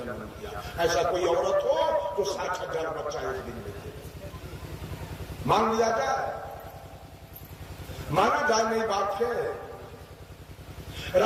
दिया। ऐसा कोई औरत हो तो 60,000 बच्चा एक दिन में दे, मान लिया जाए, माना जाए नहीं बात है।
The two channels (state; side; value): identical; both; correlation 1.00